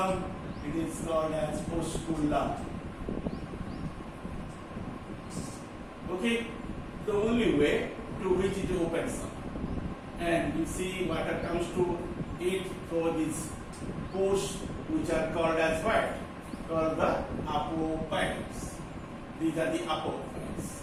It is called as osculum. Okay, the only way to which it opens up. And you see water comes to it through these pores, which are called as what? Called the apophyles. These are the apophyles.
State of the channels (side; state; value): both; identical; correlation 1.00